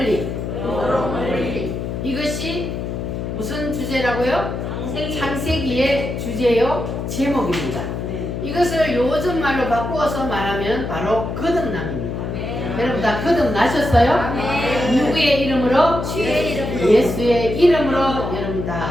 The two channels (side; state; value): left; noise; hum, 4 dB below the sound